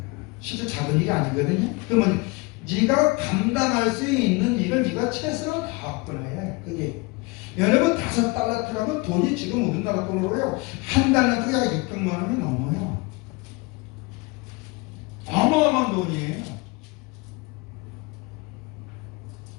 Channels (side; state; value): right; quieter; 26.2 dB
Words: 실제 작은 일이 아니거든요. 그러면 네가 감당할 수 있는 일을 네가 최선을 다했구나. 그게 여러분 5달란트라면 돈이 지금 우리나라 돈으로요 한 달란트가 약 600만 원이 넘어요. 어마어마한 돈이에요.